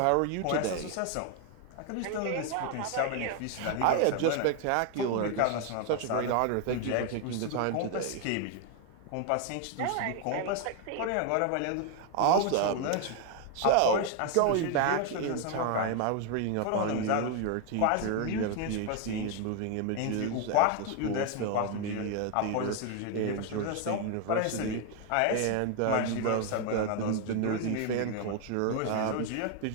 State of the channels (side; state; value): both; different; correlation 0.01